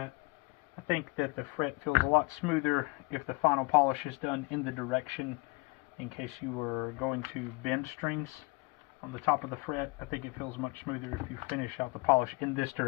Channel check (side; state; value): right; quieter; 27.0 dB